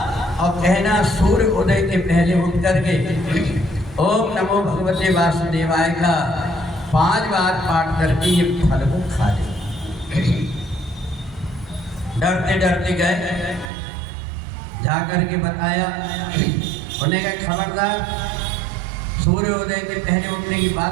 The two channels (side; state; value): left; drops out; at 13.7 s